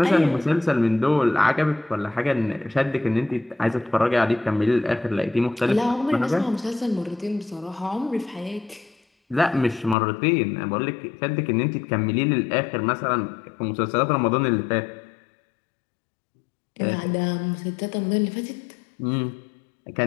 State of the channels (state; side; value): drops out; right; at 10.0 s